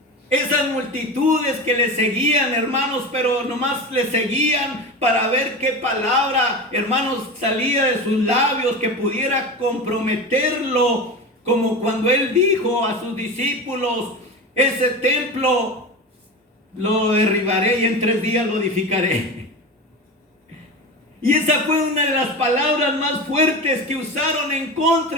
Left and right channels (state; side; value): normal; both; correlation 0.26